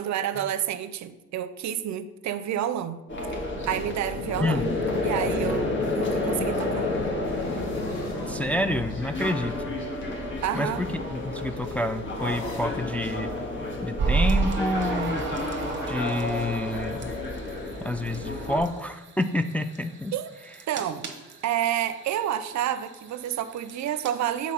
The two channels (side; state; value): both; normal; correlation 0.43